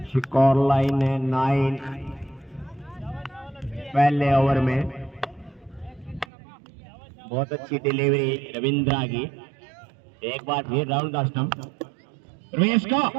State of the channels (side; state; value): left; drops out; at 6.2 s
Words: स्कोर लाइन है 9 पहले ओवर में। बहुत अच्छी डिलीवरी रविंद्रा की। एक बार फिर राउंड द स्टंप। रमेश को